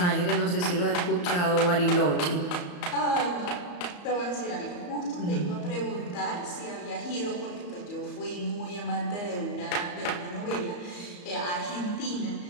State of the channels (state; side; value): late; right; 34 ms